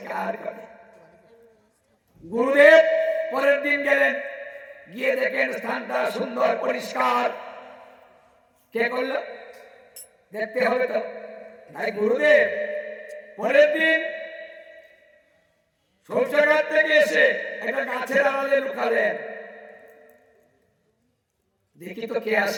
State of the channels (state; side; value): identical; both; correlation 1.00